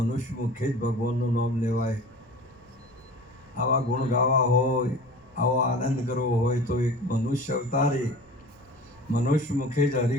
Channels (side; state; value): left; noise; rumble, 29 dB below the sound